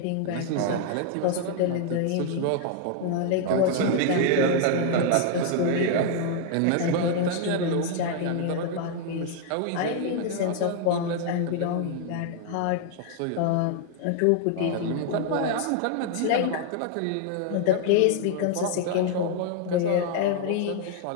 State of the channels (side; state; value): both; different; correlation 0.00